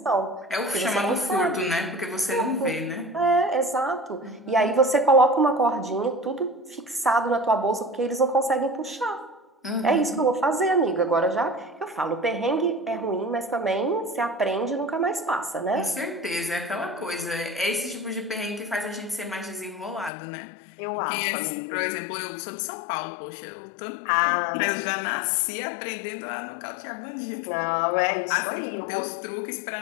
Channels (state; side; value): drops out; right; at 20.1 s